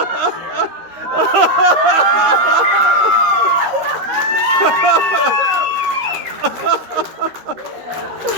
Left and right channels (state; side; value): late; left; 13 ms